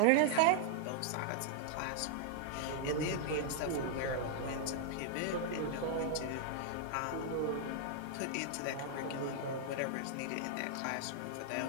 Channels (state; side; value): different; both; correlation 0.00